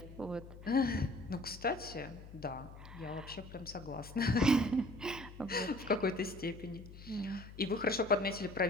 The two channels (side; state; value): left; noise; hum, 15 dB below the sound